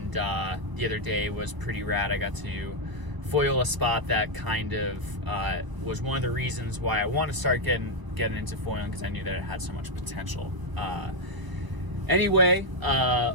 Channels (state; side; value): late; left; 1.0 ms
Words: the other day was pretty rad. I got to foil a spot that kind of was one of the reasons why I want to start getting into foiling, because I knew that it had so much potential. Anyway,